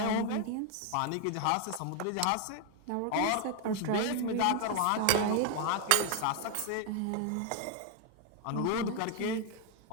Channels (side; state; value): both; different; correlation 0.01